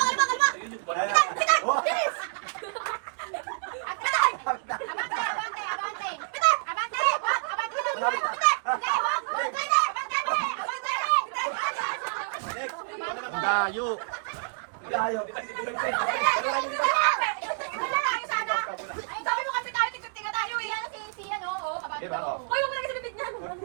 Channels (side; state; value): left; silent; digital silence